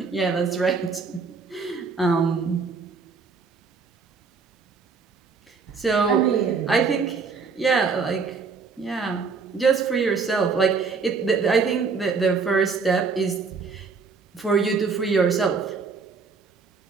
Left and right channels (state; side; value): quieter; left; 5.0 dB